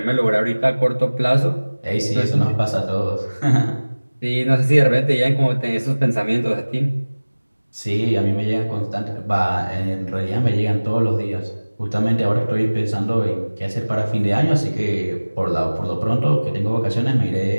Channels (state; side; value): inverted; both; correlation -1.00